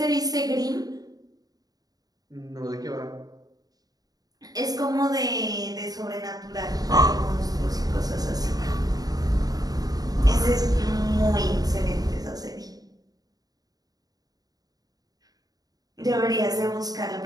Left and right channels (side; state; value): left; late; 0.18 ms